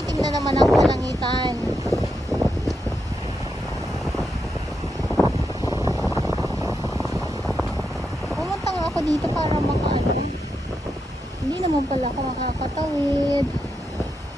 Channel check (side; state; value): both; normal; correlation 0.84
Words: na naman ang kalangitan. Pumunta nga ako dito para makaano. Hindi naman pala ako makakatawid.